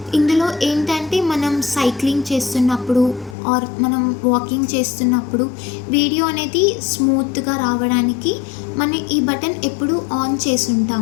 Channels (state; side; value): drops out; right; at 3.4 s